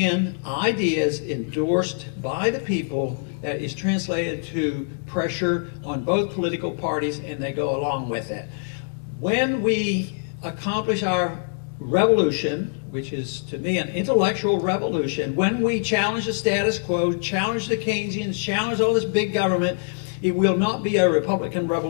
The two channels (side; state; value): right; silent; digital silence